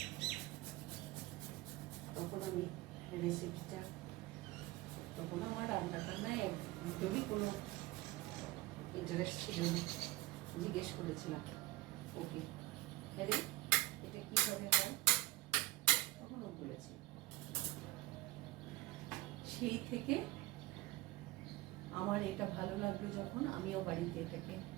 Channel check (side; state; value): left; quieter; 18.7 dB